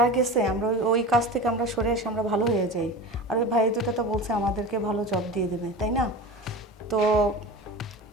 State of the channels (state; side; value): normal; both; correlation 0.31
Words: গেছে আমরা ওই কাজ থেকে আমরা সরে এসে আমরা ভালো হয়ে যাই। আর ওই ভাই দুটো তো বলছে আমাদেরকে ভালো জব দিয়ে দেবে, তাই না? তো